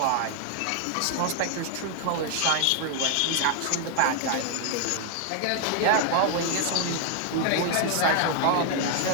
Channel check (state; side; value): different; both; correlation 0.00